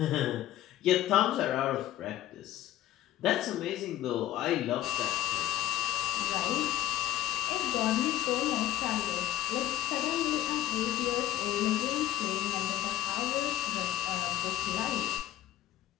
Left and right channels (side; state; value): right; quieter; 13.9 dB